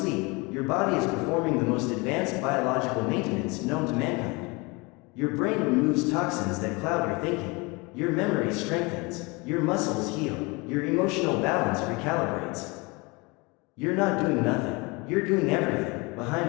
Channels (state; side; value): quieter; right; 26.8 dB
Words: your body is performing the most advanced biological maintenance known to mankind. Your brain removes toxins that cloud your thinking, your memory strengthens, your muscles heal, your emotional balance recalibrates. You're not doing nothing, you're doing everything,